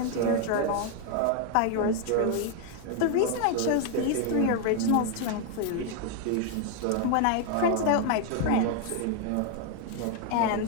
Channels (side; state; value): both; different; correlation 0.01